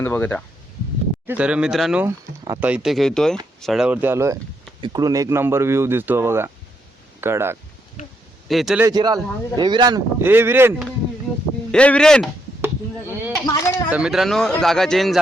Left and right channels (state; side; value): normal; both; correlation 0.77